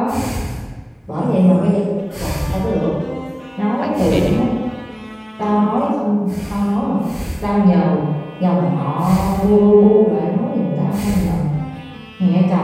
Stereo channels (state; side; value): identical; both; correlation 1.00